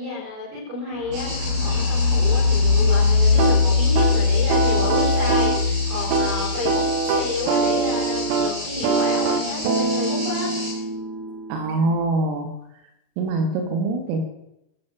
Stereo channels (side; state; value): left; late; 37 ms